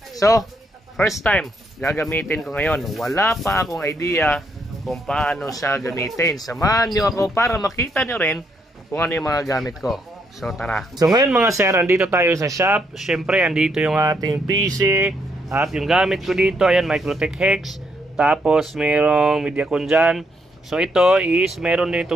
So, first time gagamitin ko ngayon. Wala pa akong idea kung paano siya gamitin. Samahan nyo ako para makita nyo rin kung ano yung mga gamit ko. So tara. So ngayon mga sir, andito tayo sa shop. Siyempre, andito yung ating PC. At yung gamit ko dito, ayan, Microtech Hex. Tapos mayroong Mediacon dyan. So ito is, meron din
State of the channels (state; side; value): normal; both; correlation 0.75